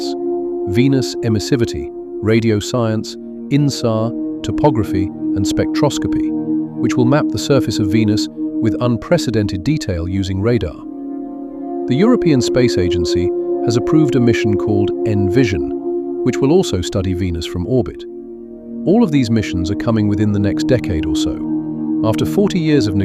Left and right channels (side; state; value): both; identical; correlation 1.00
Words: Venus Emissivity, Radio Science, INSAR, Topography, and Spectroscopy, which will map the surface of Venus with unprecedented detail using radar. The European Space Agency has approved a mission called ENVISION, which will also study Venus from orbit. All of these missions are coming within the next decade or so. After 40 years of